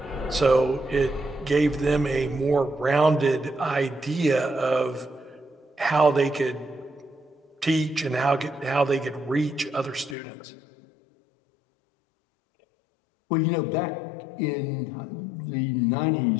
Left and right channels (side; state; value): right; drops out; at 10.2 s